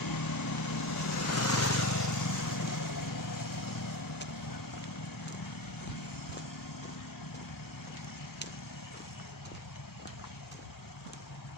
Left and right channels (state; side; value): normal; both; correlation 0.24